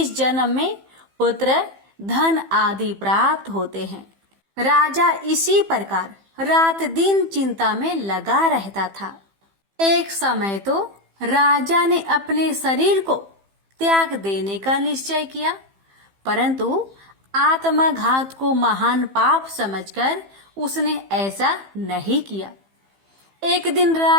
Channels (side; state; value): left; late; 15 ms